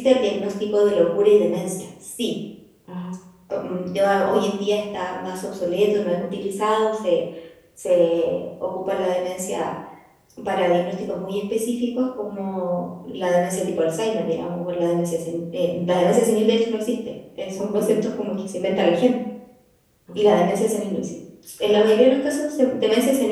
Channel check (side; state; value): both; identical; correlation 1.00